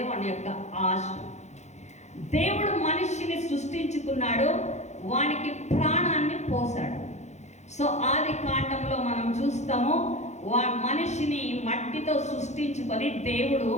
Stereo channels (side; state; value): right; late; 0.33 ms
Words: వాని యొక్క ఆశ. దేవుడు మనిషిని సృష్టించుకున్నాడు, వానికి ప్రాణాన్ని పోసాడు. సో ఆది కాండంలో మనం చూస్తాము, మనిషిని మట్టితో సృష్టించుకొని దేవుడు